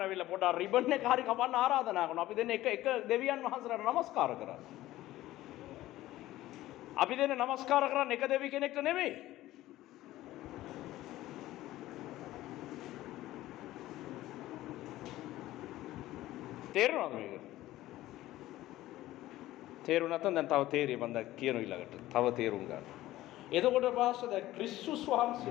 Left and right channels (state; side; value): quieter; right; 15.7 dB